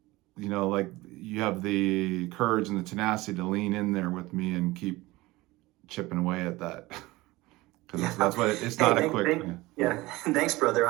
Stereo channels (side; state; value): left; quieter; 20.2 dB